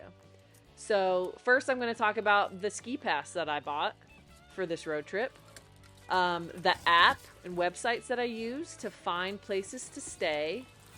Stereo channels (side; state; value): both; identical; correlation 1.00